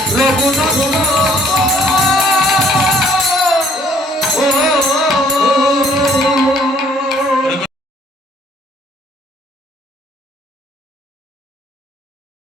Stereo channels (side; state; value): both; normal; correlation 0.62